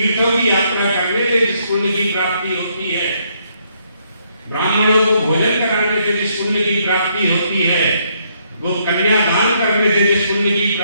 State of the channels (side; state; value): both; inverted; correlation -0.72